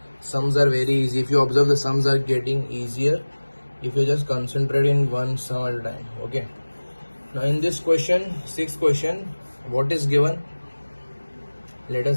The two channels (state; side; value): inverted; both; correlation -1.00